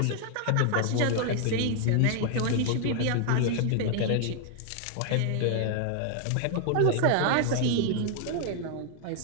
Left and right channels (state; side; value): different; both; correlation 0.00